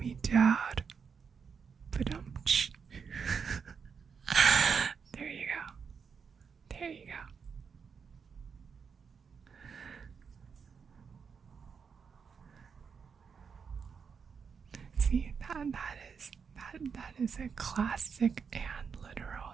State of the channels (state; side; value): quieter; left; 6.1 dB